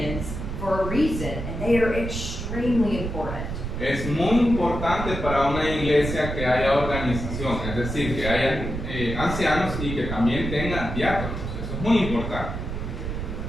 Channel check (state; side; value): noise; right; rumble, 5 dB below the sound